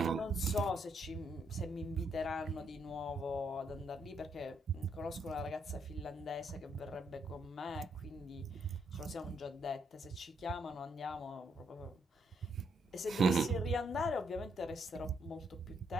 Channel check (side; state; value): both; normal; correlation 0.74